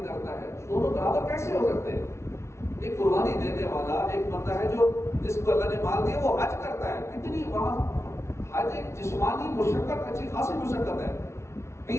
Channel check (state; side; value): late; right; 0.13 ms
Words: کرتا ہے، دونوں برابر کیسے ہو سکتے ہیں؟ ایک قربانی دینے والا ایک بندہ ہے جو جس کو اللہ نے مال دیا وہ حج کرتا ہے، کتنی وہاں حج ایک جسمانی مشقت، اچھی خاصی مشقت ہے،